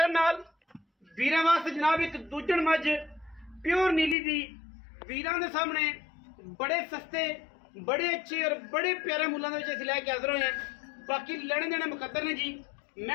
नाल वीरां वास्ते जनाब एक दूजण मज प्योर नीली दी वीरां दे सामने बड़े सस्ते बड़े अच्छे और बड़े प्यारे मुल्लां दे विच असीं लैके हाज़र होए हैं। बाकी लेने देने मुकद्दर ने जी। मैं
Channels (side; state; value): right; drops out; at 4.2 s